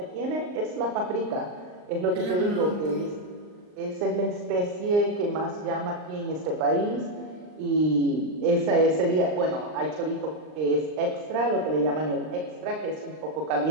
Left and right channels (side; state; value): left; late; 39 ms